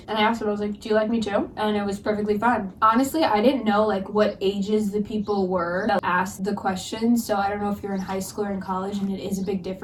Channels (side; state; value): both; identical; correlation 1.00